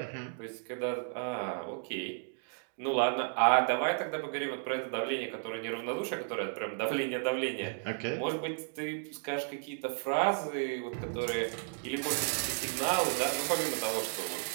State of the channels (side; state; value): left; silent; 55 dB below the other